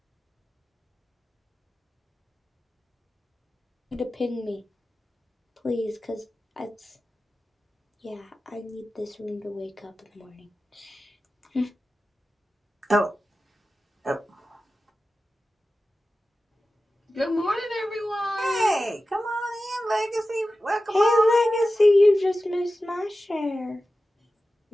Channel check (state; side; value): normal; both; correlation 0.94